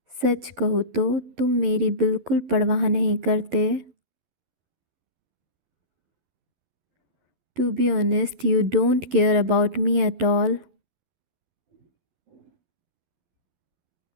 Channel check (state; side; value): late; left; 12 ms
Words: सच कहूँ तो तुम मेरी बिल्कुल परवाह नहीं करते। To be honest, you don't care about me at all.